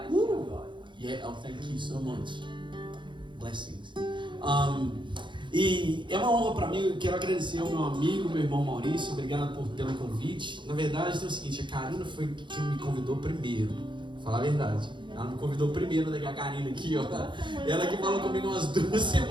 Yeah, oh, thank you so much. Blessings. E é uma honra para mim. Eu quero agradecer ao meu amigo, meu irmão Maurício. Obrigado pelo convite. Na verdade, é o seguinte: a Karina foi quem me convidou primeiro. Vou falar a verdade. Ela me convidou primeiro, a Karina aqui, ó. Ela que falou comigo umas 2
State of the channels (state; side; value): late; left; 0.23 ms